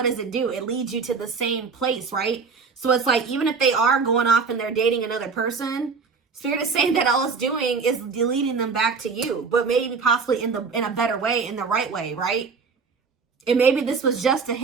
does it do? It leads you to the same place, right? So it's like, even if they are going off and they're dating another person, Spirit is saying that all it's doing is leading them back to you, but maybe possibly in a better way, in the right way, right? And maybe this was just a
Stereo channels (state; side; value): quieter; left; 5.1 dB